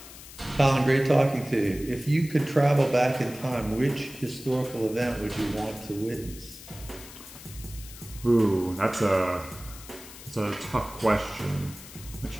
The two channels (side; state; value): left; noise; hiss, 16 dB below the sound